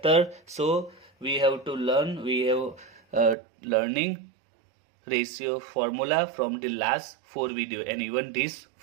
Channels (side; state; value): left; drops out; at 3.4 s